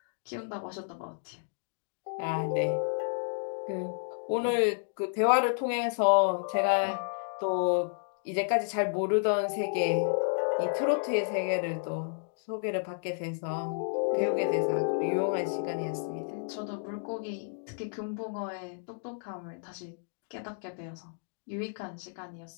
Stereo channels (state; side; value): silent; right; digital silence